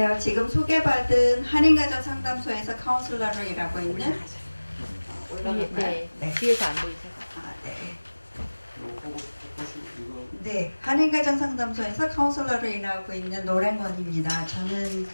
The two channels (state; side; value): inverted; both; correlation -1.00